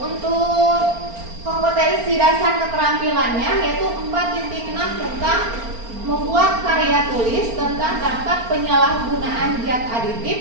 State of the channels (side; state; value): left; late; 4.4 ms